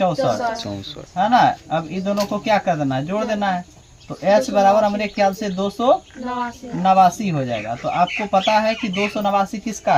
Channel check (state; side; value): identical; both; correlation 1.00